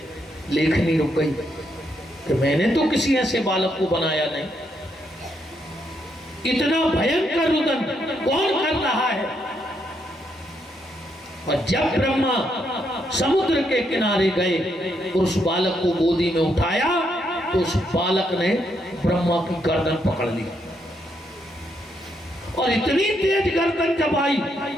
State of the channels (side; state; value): both; normal; correlation 0.77